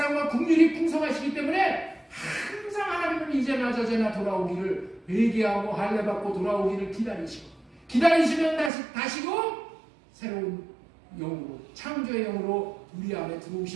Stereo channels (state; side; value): drops out; left; at 8.7 s